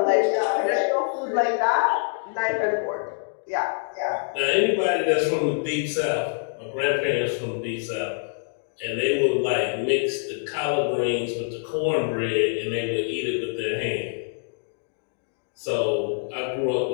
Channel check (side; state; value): right; silent; 61 dB below the other